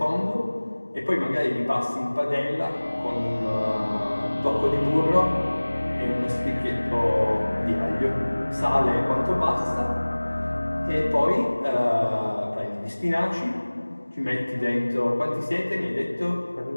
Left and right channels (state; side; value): inverted; both; correlation -1.00